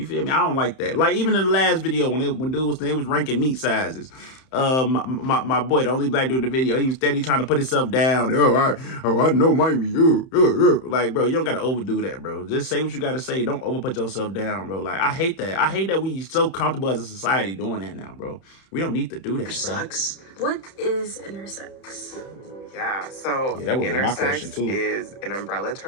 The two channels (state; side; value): late; right; 31 ms